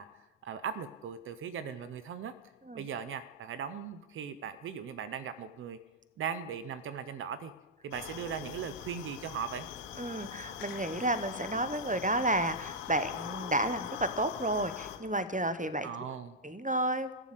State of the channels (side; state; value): both; normal; correlation -0.06